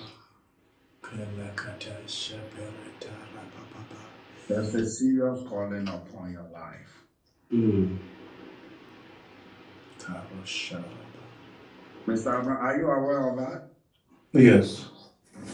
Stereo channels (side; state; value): both; identical; correlation 1.00